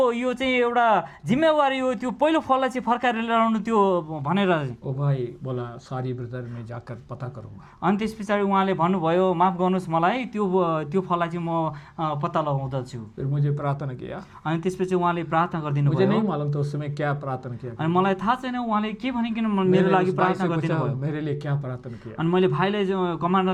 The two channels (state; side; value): identical; both; correlation 1.00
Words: यो चाहिँ एउटा जिम्मेवारी हो, त्यो पहिलो फललाई चाहिँ फर्काएर लिएर आउनु त्यो भनेर। ओ भाई बोला सॉरी ब्रदर, मैं जाकर पता करूंगा. अनि त्यस पछाडि उहाँले भन्नुभयो माफ गर्नुहोस् मलाई, त्यो फललाई चाहिँ म पत्ता लगाउँदछु। फिर मुझे प्रार्थना किया. अनि त्यसपछि उहाँले प्रार्थना गरिदिनु मुझे नहीं भयो। मालूम तो उस समय क्या प्रार्थना किया. अनि मलाई थाहा छैन उहाँले के भनिकन मेरो मैंने लागि उस भाई प्रार्थना से गरिदिनु पूछा, भयो। मेरे लिए क्या प्रार्थना किया. अनि मैले भाइलाई